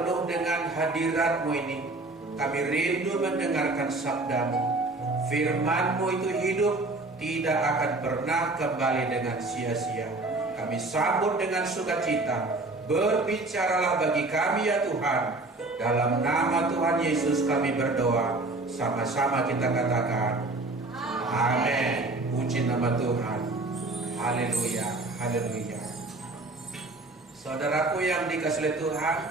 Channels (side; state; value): left; quieter; 3.0 dB